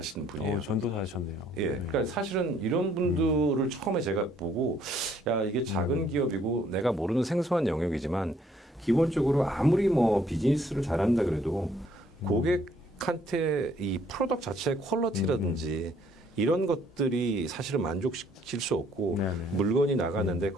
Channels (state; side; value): normal; both; correlation 0.64